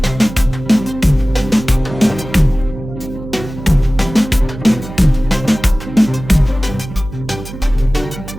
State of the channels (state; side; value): noise; right; hum, 12 dB below the sound